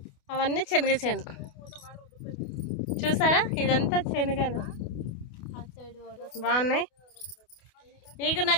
అవన్నీ శనగ చేను. చూసారా, ఇదంతా శనగలు బాగున్నాయి. మీకు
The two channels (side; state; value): right; late; 28 ms